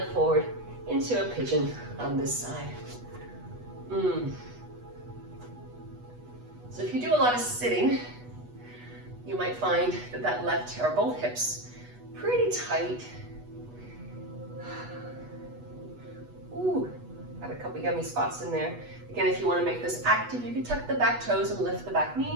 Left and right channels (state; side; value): late; left; 8.2 ms